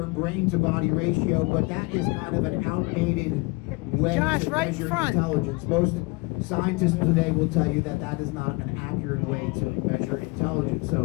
brain-to-body ratio, but that is kind of an outdated way to measure intelligence. Most scientists today will tell you that that is not an accurate way to measure intelligence.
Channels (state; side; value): quieter; right; 25.1 dB